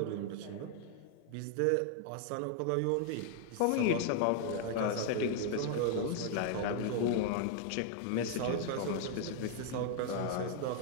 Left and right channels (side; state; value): both; different; correlation 0.00